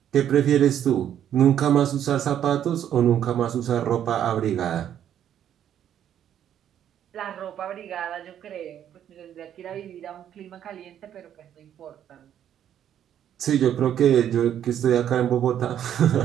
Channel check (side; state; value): left; quieter; 10.1 dB